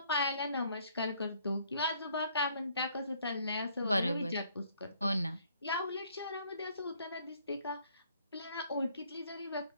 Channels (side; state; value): both; inverted; correlation -0.64